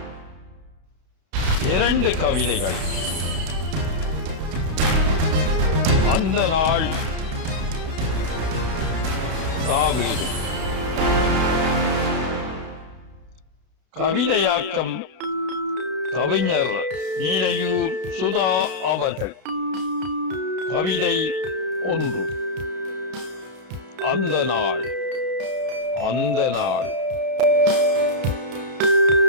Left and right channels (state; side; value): late; left; 32 ms